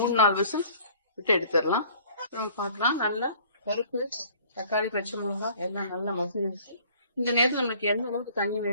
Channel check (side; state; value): both; inverted; correlation -0.53